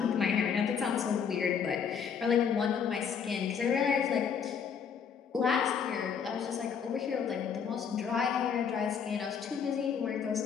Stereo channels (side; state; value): right; quieter; 6.9 dB